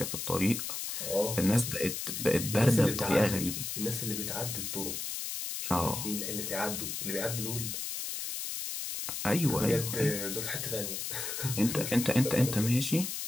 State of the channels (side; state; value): left; noise; hiss, 4 dB below the sound